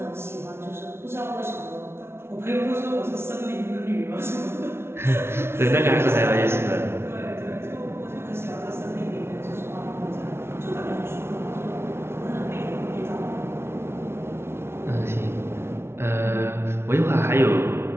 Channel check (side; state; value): left; late; 0.12 ms